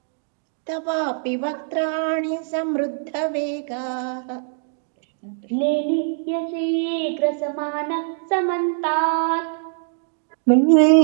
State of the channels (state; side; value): silent; left; digital silence